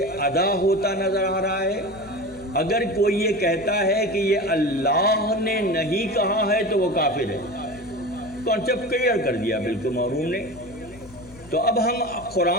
ادا ہوتا نظر آ رہا ہے، اگر کوئی یہ کہتا ہے کہ یہ اللہ نے نہیں کہا ہے تو وہ کافر ہے. کانسیپٹ کلیئر کر دیا بالکل معروف نے. تو اب ہم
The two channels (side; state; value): left; noise; hum, 21 dB below the sound